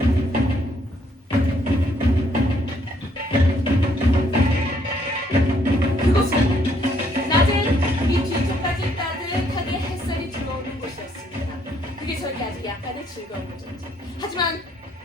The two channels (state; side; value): normal; both; correlation 0.69